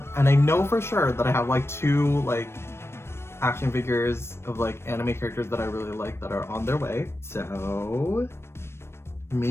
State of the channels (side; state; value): right; late; 0.12 ms